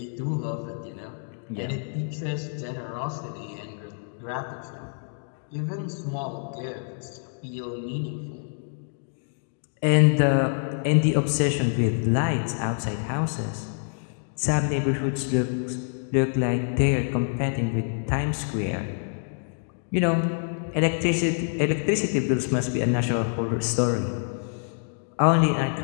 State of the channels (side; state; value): right; silent; digital silence